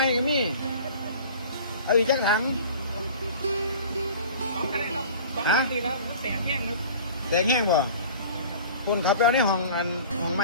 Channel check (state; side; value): inverted; both; correlation -0.43